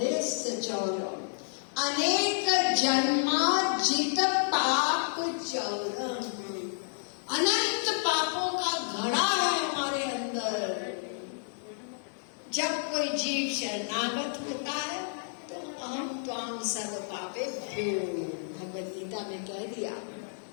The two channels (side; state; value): right; silent; digital silence